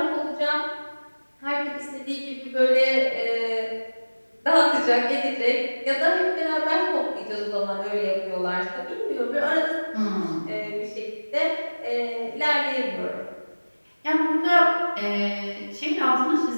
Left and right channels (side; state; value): both; inverted; correlation -1.00